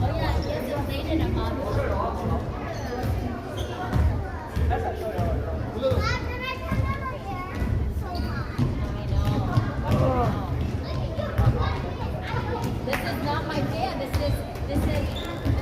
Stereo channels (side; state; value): both; identical; correlation 1.00